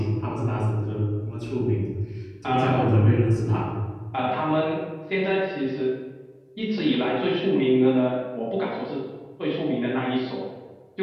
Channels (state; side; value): identical; both; correlation 1.00